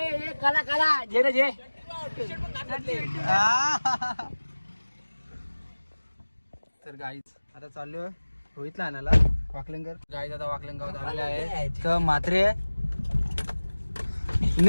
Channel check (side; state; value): both; inverted; correlation -1.00